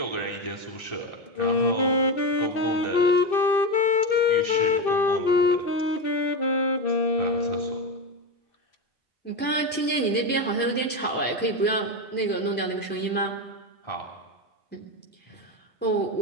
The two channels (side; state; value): both; normal; correlation 0.14